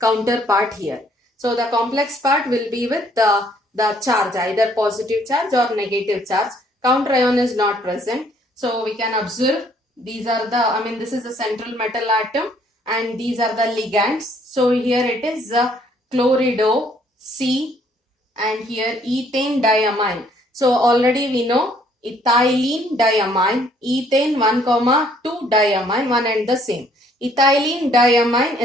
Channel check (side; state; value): both; normal; correlation 0.64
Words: counterpart here. So the complex part will be with the charge, either positive charge or negative charge. Counter ion is not present. So we can observe these are this is the central metal atom and these are the ligands. So here it is chlorido C and here ethane diamine. So already we know ethylene diamine, ethane 1,2 diamine, one and the same. Ethylene diamine